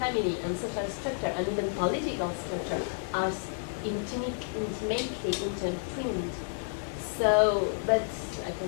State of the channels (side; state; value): right; silent; digital silence